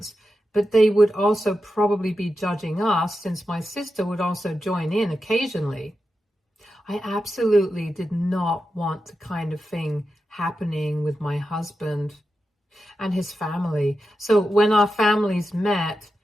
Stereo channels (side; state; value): both; normal; correlation 0.90